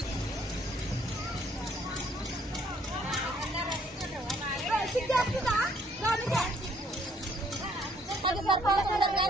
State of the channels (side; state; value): both; normal; correlation 0.64